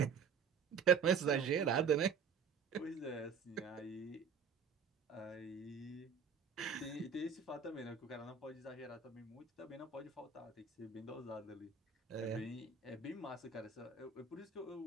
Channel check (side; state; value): left; quieter; 6.0 dB